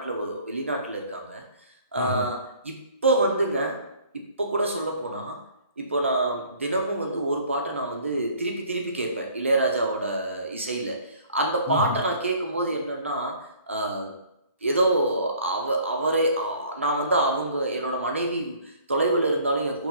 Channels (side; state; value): both; inverted; correlation -0.54